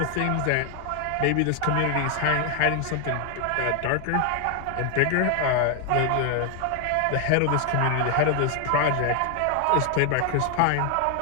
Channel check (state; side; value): different; both; correlation 0.00